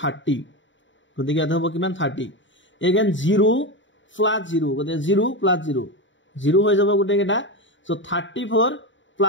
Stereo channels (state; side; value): late; right; 0.55 ms